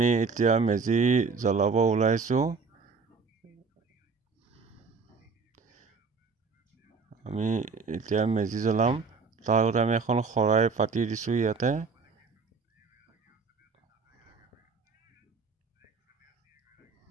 এতিয়া মেজি জ্বলাব ওলাইছো। আমি এতিয়া মেজি জ্বলাম। তাৰ আগতে আমি এখন খৰাই পাতি দিছো ইয়াতে।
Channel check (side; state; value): left; quieter; 4.8 dB